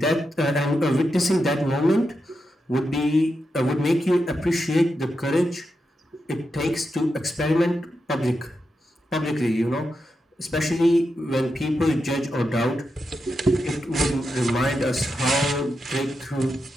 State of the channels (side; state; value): both; normal; correlation 0.87